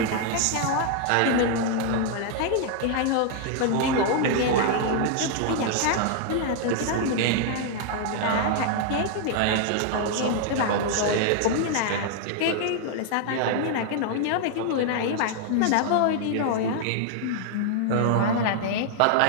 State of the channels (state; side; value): different; both; correlation 0.00